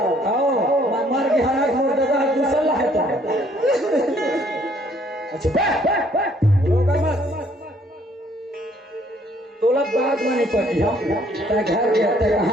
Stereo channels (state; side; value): normal; both; correlation 0.63